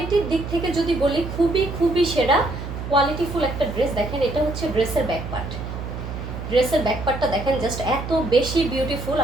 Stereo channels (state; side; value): noise; right; hum, 7 dB below the sound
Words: দিক থেকে যদি বলি খুবই খুবই সেরা কোয়ালিটিফুল একটা ড্রেস। দেখেন এটা হচ্ছে ড্রেসের ব্যাক পার্ট। ড্রেসের ব্যাক পার্টটা দেখেন জাস্ট এত বেশি বিউটিফুল,